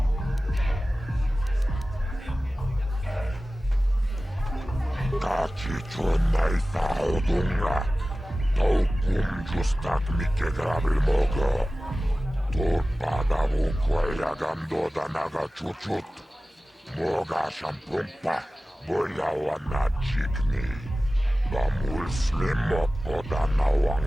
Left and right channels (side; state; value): both; normal; correlation 0.96